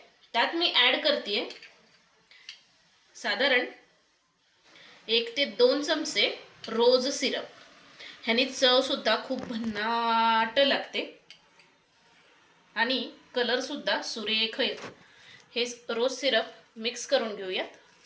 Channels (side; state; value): both; identical; correlation 1.00